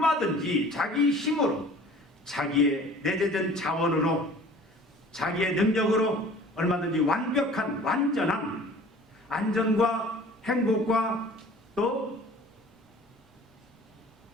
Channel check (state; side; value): normal; both; correlation 0.47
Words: 자기 힘으로 자기의 내재된 자원으로 자기의 능력으로 얼마든지 완벽한 완전한 안전과 행복과 또